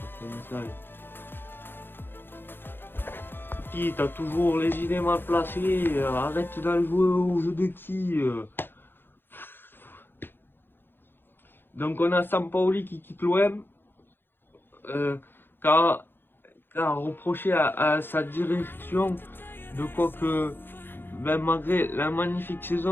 un message. Qui t'as toujours les idées mal placées, arrête d'aller jouer au jeu de qui. Donc on a Sampaoli qui quitte l'OM, car reproché à sa direction de quoi que, ben, malgré la magnifique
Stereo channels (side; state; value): right; late; 0.10 ms